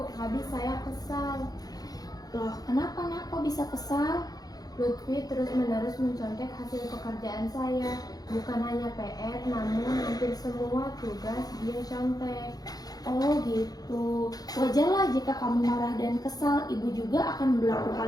habis saya kesal. Loh, kenapa nak kok bisa kesal? Lutfi terus-menerus mencontek hasil pekerjaan saya. Bukan hanya PR, namun hampir semua tugas dia contek. Oh gitu. Wajarlah jika kamu marah dan kesal. Ibu juga akan berlaku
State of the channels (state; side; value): late; right; 0.19 ms